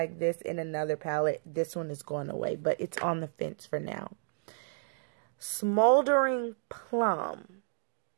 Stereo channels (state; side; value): silent; left; digital silence